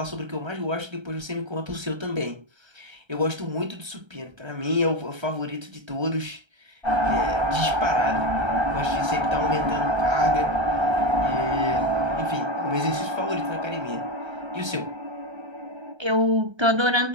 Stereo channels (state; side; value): late; left; 1.3 ms